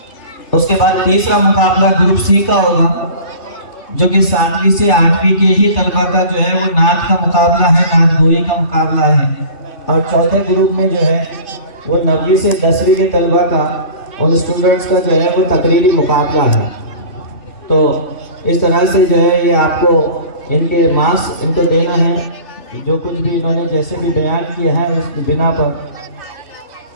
اس کے بعد تیسرا مقابلہ گروپ سی کا ہوگا، جو کہ 7ویں سے 8ویں کے ہی طلبہ کا جو ہے وہ نعت کا مقابلہ ہے، نعت گوئی کا مقابلہ ہے۔ اور چوتھے گروپ میں جو ہے وہ 9ویں سے 10ویں کے طلبہ کا، ان اسٹوڈنٹس کا جو ہے وہ تقریری مقابلہ ہے۔ تو اس طرح سے جو ہے یہ آپ کو ان کے ماسک ان کو دینا ہے، جو کچھ بھی انہوں نے جیسے بھی بیان کیا ہے اس کی بنا پر۔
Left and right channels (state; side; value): late; right; 3.4 ms